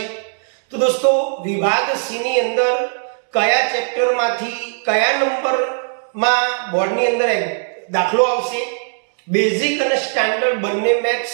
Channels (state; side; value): silent; left; 67 dB below the other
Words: તો દોસ્તો વિભાગ સી ની અંદર કયા ચેપ્ટરમાંથી કયા નંબરમાં બોર્ડની અંદર દાખલો આવશે, બેઝિક અને સ્ટાન્ડર્ડ બંને મેથ્સ